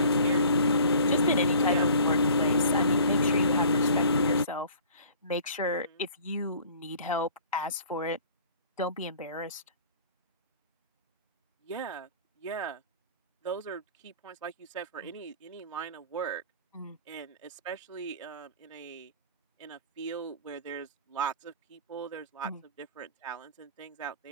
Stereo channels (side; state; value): both; inverted; correlation -0.49